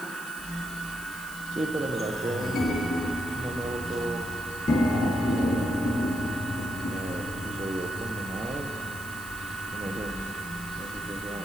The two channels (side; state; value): left; noise; hiss, 15 dB below the sound